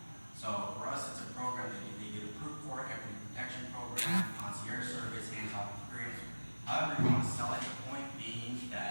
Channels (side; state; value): both; inverted; correlation -1.00